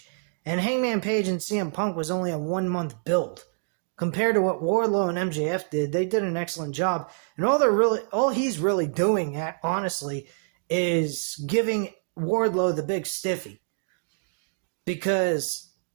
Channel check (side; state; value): left; silent; digital silence